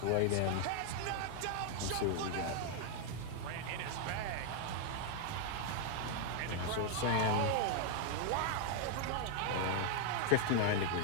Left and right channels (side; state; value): both; different; correlation 0.00